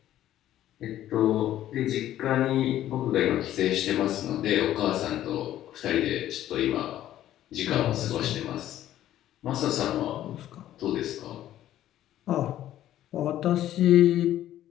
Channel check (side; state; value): right; quieter; 12.7 dB